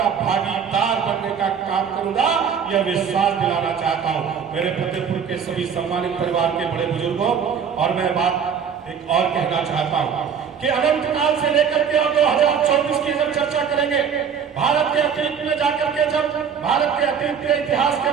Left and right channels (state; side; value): quieter; left; 7.2 dB